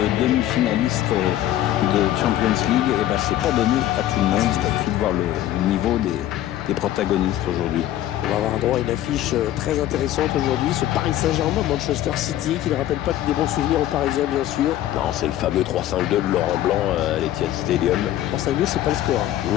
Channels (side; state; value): right; quieter; 13.1 dB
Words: demi-finaliste de Champions League, et ben c'est pas donné à tout le monde. Il suffit de voir le niveau des protagonistes aujourd'hui. On va avoir droit à une affiche très intéressante aujourd'hui, ce Paris Saint-Germain, Manchester City, qui ne rappelle pas des bons souvenirs aux Parisiens, bien sûr. Non, c'est le fameux 3-5-2 de Laurent Blanc à l'Etihad Stadium. 3-5-2, c'est pas le score.